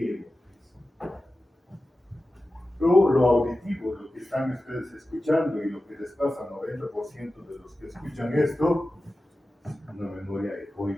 hemos visto. Luego, lo auditivo, lo que están ustedes escuchando y lo que les pasa al 90% de los que escuchan esto, una memoria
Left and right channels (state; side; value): normal; both; correlation 0.94